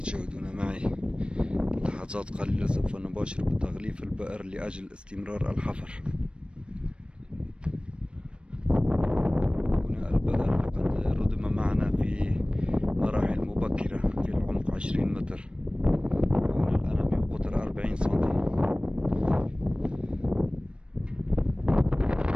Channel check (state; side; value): late; left; 0.057 ms